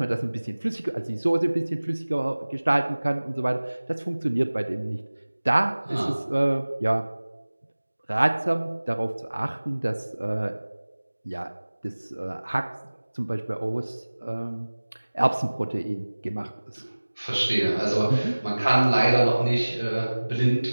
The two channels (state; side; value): inverted; both; correlation -1.00